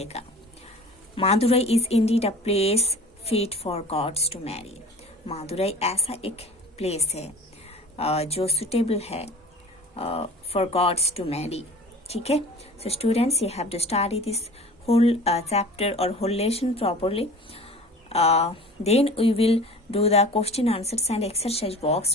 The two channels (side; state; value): both; normal; correlation 0.42